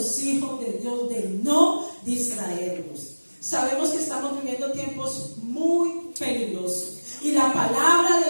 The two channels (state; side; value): inverted; both; correlation -1.00